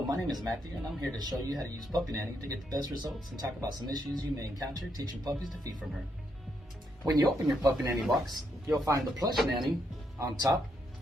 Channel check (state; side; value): normal; both; correlation 0.77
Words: my name is Matthew, and I'm here to show you how to use Puppy Nanny to get the best results and talk about some issues you may encounter teaching puppies to feed from her. When you open your Puppy Nanny box, you'll find the plush nanny on top